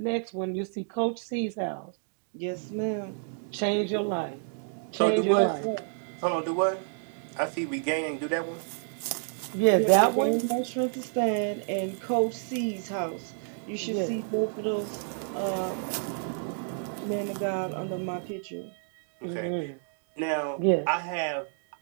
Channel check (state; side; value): silent; left; digital silence